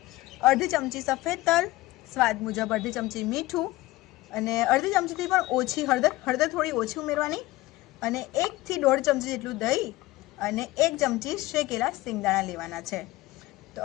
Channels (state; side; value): quieter; right; 18.8 dB